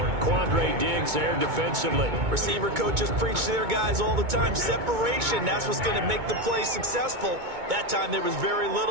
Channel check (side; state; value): left; late; 2.2 ms